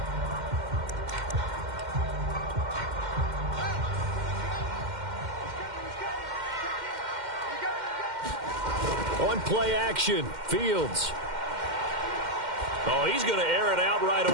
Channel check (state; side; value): late; left; 2.1 ms